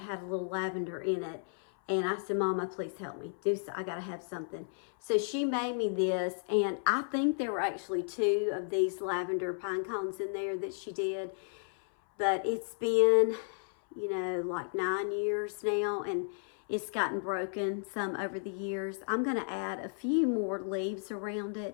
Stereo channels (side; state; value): right; silent; 56 dB below the other